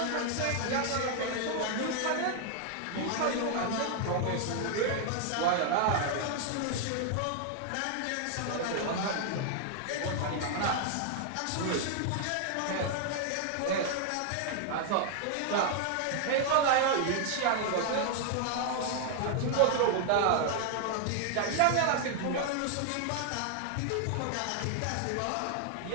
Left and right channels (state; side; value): different; both; correlation 0.00